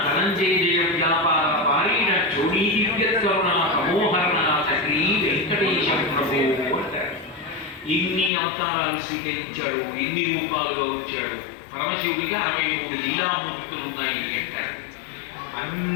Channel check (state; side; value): drops out; right; at 8.3 s